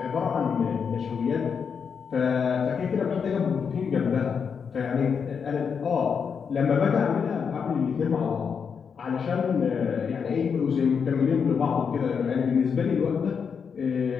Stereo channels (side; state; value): right; quieter; 6.4 dB